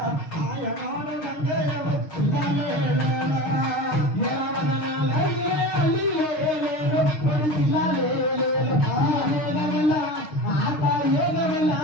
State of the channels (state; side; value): late; right; 6.5 ms